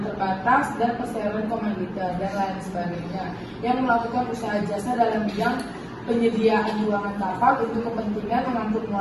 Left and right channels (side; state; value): both; identical; correlation 1.00